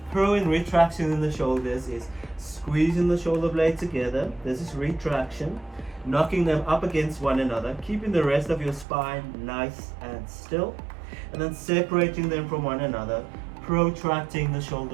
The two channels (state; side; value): drops out; left; at 8.8 s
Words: Pro and retraction in the shoulders is squeezing the shoulder blade together. This is retraction. knocking them up against one another, keeping the rest of your spine nice and still, and then separating them from one another, protracting the